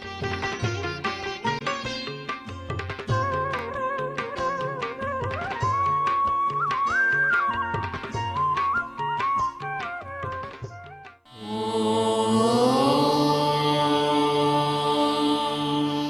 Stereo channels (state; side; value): identical; both; correlation 1.00